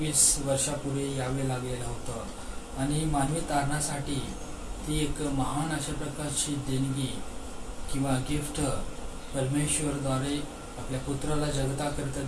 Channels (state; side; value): identical; both; correlation 1.00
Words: वर्षापूर्वी यावे लागलेलं होतं. आणि मानवी तारणासाठी ती एक महान अशा प्रकारची देणगी किंवा गिफ्ट परमेश्वरद्वारे आपल्या पुत्राला जगताकरिता